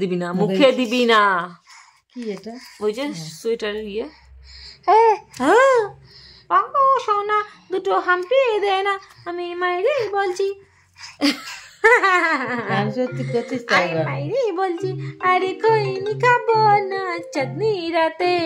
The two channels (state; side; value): identical; both; correlation 1.00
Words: দিবি না, মুখে দিবি না। কি এটা? ওই যে সোয়েটারের ইয়ে। হ্যাঁ হ্যাঁ, পাঙ্কু সোনা দুটো হাম্পি দে না, আমি মাইরে বলছি। সত্যি করছিস তাই? মাইরে বলছি, আরে কইনি খাবো না চাঁদনি রাতে,